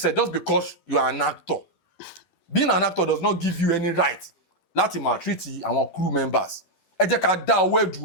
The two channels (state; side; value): late; right; 12 ms